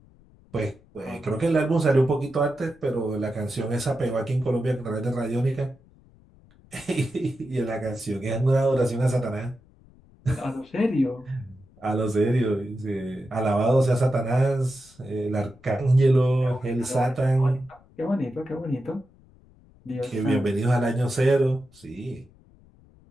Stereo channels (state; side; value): noise; left; rumble, 27 dB below the sound